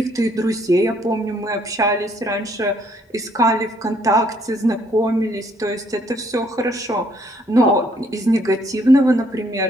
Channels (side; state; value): both; normal; correlation 0.67